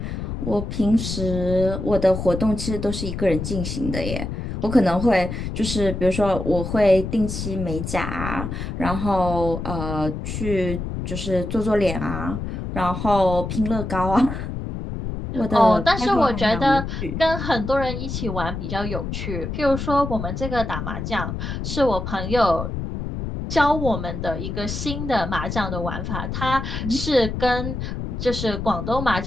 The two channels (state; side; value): noise; left; rumble, 5 dB below the sound